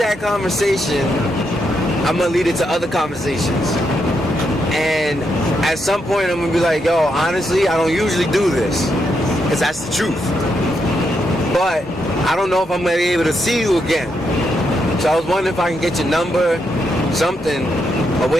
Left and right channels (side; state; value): both; normal; correlation 0.81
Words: conversation, I'm gonna lead it to other conversations. And at some point, I'm gonna be like, yo, honestly, I don't usually do this, because that's the truth. But I don't know if I'm gonna be able to see you again. So I was wondering if I can get your number, something, a